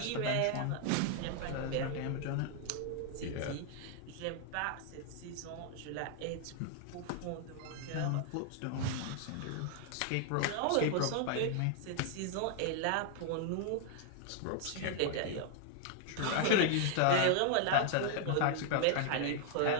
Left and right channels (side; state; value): both; different; correlation 0.00